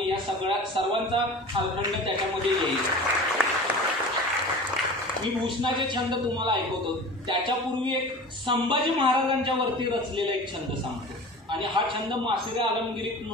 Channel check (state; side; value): normal; both; correlation 0.37